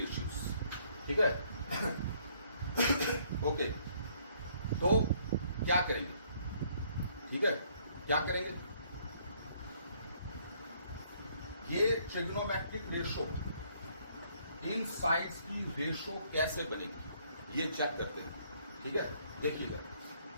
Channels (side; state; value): both; inverted; correlation -0.65